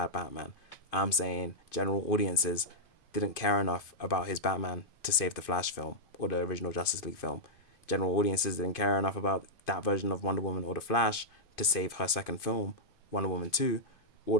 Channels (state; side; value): late; right; 2.5 ms